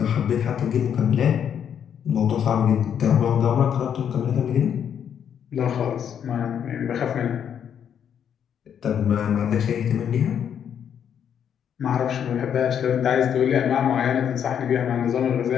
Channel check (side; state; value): right; quieter; 8.6 dB